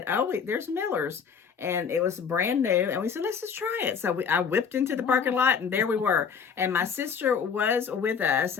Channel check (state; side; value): quieter; right; 6.5 dB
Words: oh, wait, there's Miller's. And it was brand new. And we said, let's just try it. So I whipped into the parking lot and there we were. And my sister was with us.